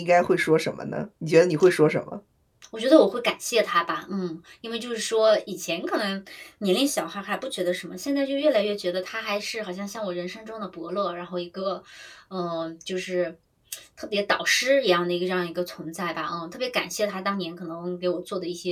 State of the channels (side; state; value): both; identical; correlation 1.00